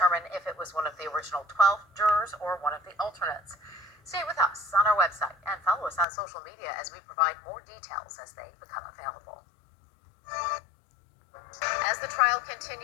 if it was one of the original 12 jurors or one of the alternates. Stay with us on our website and follow us on social media as we provide more details as they become available. As the trial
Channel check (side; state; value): right; drops out; at 6.1 s